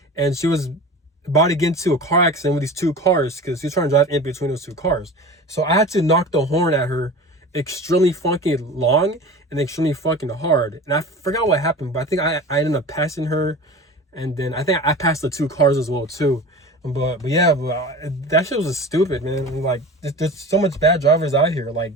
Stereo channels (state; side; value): normal; both; correlation 0.35